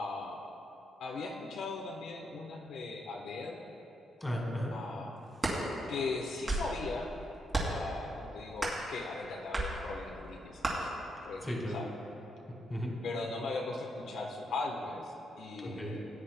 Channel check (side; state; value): both; normal; correlation 0.79